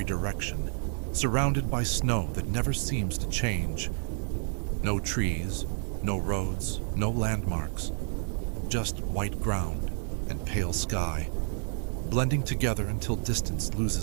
direction, surrounded by snow that never seems to change. No trees, no roads, no landmarks. Just white ground and pale sky, blending together until distance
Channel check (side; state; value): left; silent; digital silence